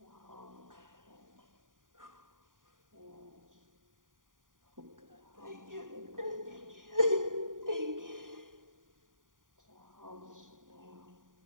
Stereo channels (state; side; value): late; left; 0.89 ms